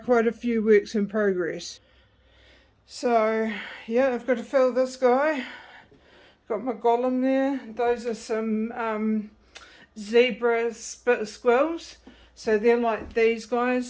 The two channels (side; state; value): both; identical; correlation 1.00